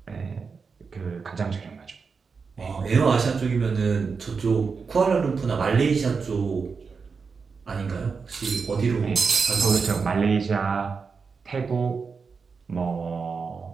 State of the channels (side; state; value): left; quieter; 5.2 dB